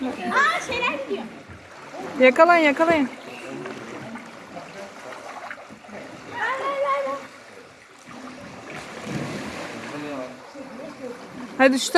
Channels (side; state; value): both; identical; correlation 1.00